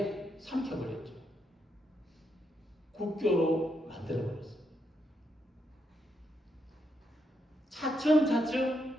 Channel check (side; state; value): both; normal; correlation 0.80